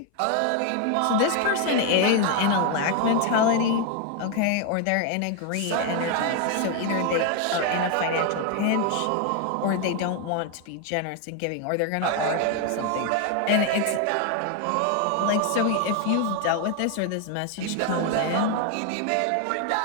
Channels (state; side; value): different; both; correlation 0.01